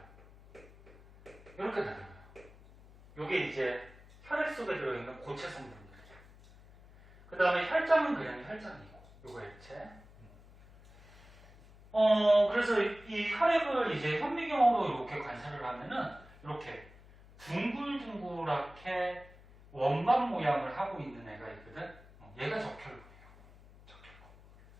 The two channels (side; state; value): left; noise; hum, 22 dB below the sound